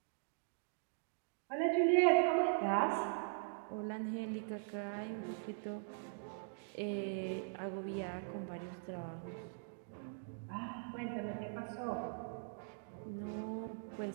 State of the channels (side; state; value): left; silent; digital silence